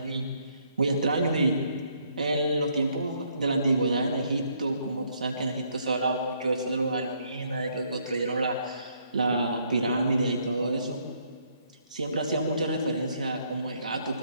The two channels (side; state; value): both; inverted; correlation -0.70